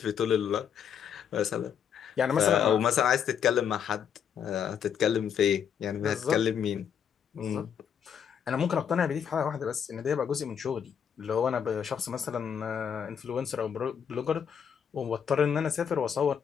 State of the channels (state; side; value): quieter; right; 8.0 dB